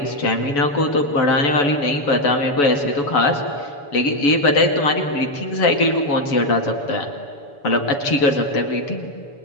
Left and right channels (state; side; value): late; right; 7.0 ms